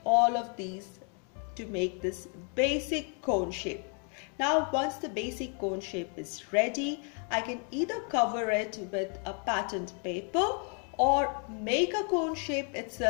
all of these to make this basic cone shape. Now once the basic cone shape is ready, I can either cover it with a patterned paper or make a cone shape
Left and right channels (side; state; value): right; quieter; 39.8 dB